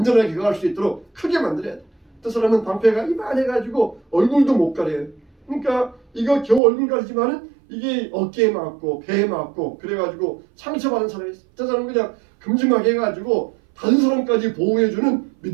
거할 수 있도록 크게 만들어야 돼. 어떤 사람은 방패가 이만해가지고 얼굴도 못 가려요. 그러니까 이거 겨우 얼굴 가리지만은 이게 어깨에 맞고 배에 맞고 그래가지고 상처받은 사람이 있어요. 저 사람은 그냥 큼지막하게 해가지고 다른 사람까지 보호해주는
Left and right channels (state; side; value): drops out; left; at 6.6 s